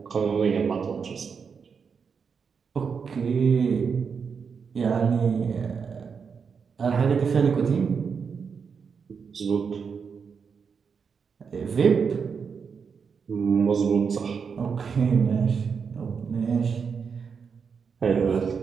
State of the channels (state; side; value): quieter; left; 6.0 dB